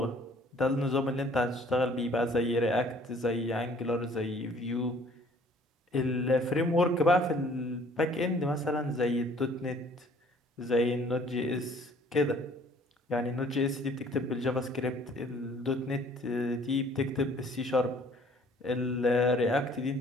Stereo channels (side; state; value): both; normal; correlation 0.56